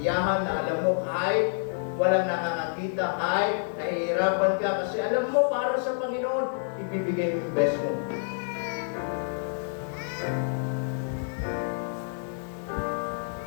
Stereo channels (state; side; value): silent; right; digital silence